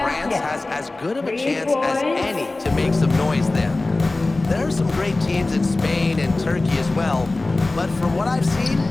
has as good of a chance as any to make some noise there. There are some great teams in Spain and Turkey as well, but from what I've seen,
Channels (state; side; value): quieter; right; 3.1 dB